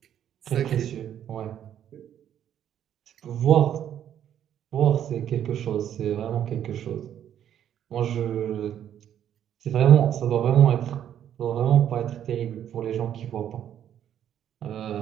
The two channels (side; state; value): left; quieter; 10.1 dB